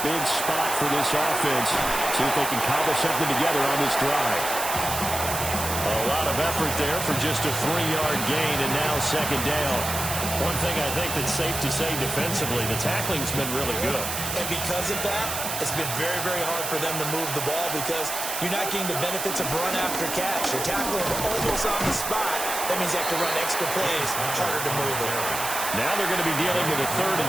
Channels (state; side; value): noise; right; hiss, 4 dB below the sound